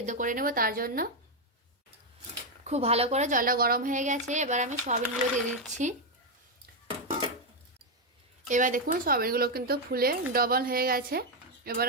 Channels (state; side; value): normal; both; correlation 0.03